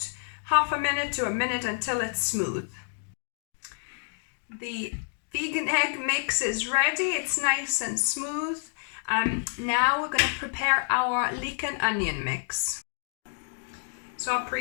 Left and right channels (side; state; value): right; silent; 59 dB below the other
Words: half a minute to a minute until it's smooth. The vegan egg mix is ready. It's nice and smooth. Now we're going to prepare our leek and onion mix. So I